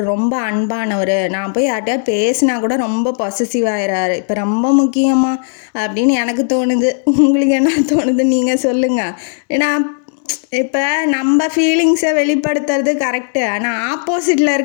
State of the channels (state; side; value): silent; right; digital silence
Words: ரொம்ப அன்பானவர், நான் போய் யார்கிட்டயா பேசினா கூட ரொம்ப பொசசிவ் ஆயிடுறாரு, இப்போ ரொம்ப முக்கியமாக அப்படின்னு எனக்கு தோணுது. உங்களுக்கு என்ன தோணுது நீங்கள் சொல்லுங்கள். ஏன்னா இப்போ நம்ம ஃபீலிங்ஸை வெளிப்படுத்துறது கரெக்டு, ஆனால் ஆப்போசிட்டில்